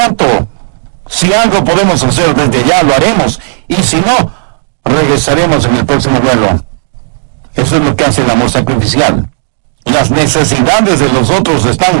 Si algo podemos hacer desde ya, lo haremos. Y si no, regresaremos en el próximo vuelo. Eso es lo que hace el amor sacrificial. Las necesidades de los otros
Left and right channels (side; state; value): left; silent; digital silence